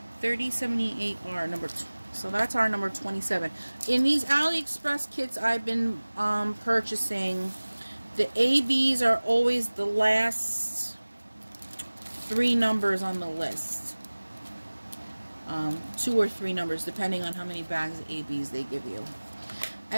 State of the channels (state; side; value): inverted; both; correlation -1.00